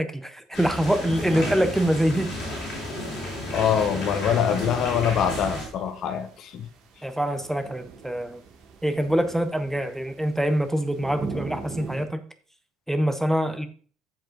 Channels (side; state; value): both; normal; correlation 0.79